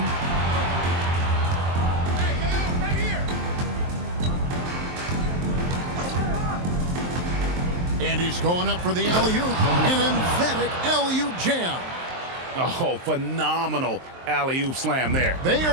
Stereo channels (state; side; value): late; left; 23 ms